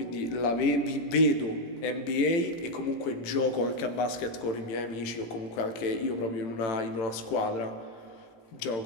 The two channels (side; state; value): right; late; 18 ms